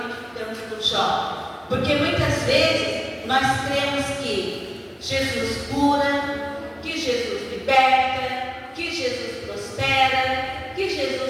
com Jó. Porque muitas vezes nós cremos que Jesus cura, que Jesus liberta, que Jesus prospera, que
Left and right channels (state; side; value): identical; both; correlation 1.00